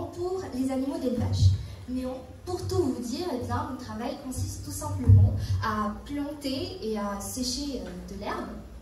pour les animaux d'élevage. Mais pour tout vous dire, eh bien, mon travail consiste tout simplement à planter et à sécher de l'herbe,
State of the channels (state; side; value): identical; both; correlation 1.00